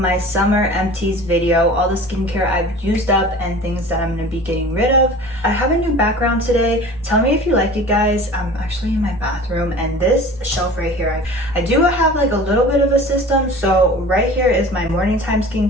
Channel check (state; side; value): noise; right; hum, 23 dB below the sound